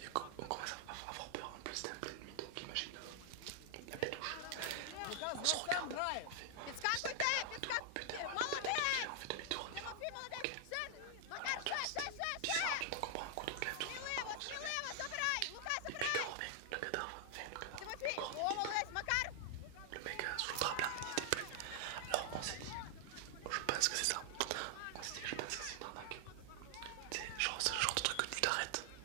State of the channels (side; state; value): both; different; correlation 0.00